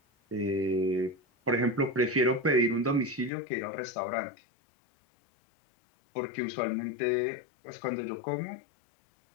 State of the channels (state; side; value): drops out; right; at 3.3 s